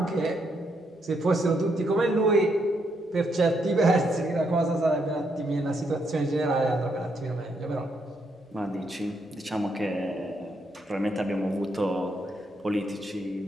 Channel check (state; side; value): normal; both; correlation 0.77